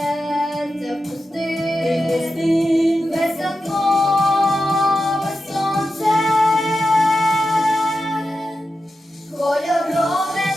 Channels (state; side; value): normal; both; correlation 0.90